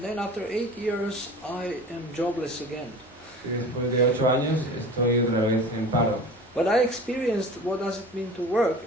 then after 8 years, I am jobless again. Y después de 8 años estoy otra vez en paro. But I experienced what does it mean to work,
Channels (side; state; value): both; normal; correlation 0.38